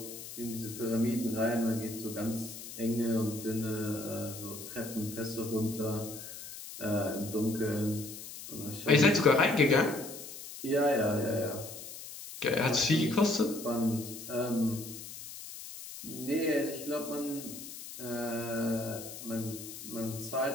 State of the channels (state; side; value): noise; left; hiss, 12 dB below the sound